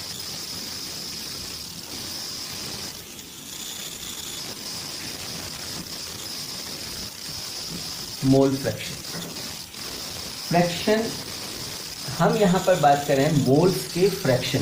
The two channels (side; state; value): both; identical; correlation 1.00